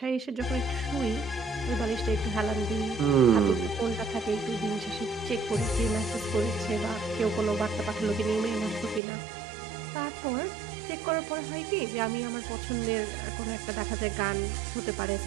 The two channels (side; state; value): left; drops out; at 9.0 s